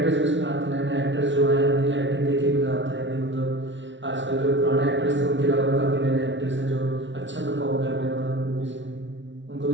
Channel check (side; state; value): left; late; 0.54 ms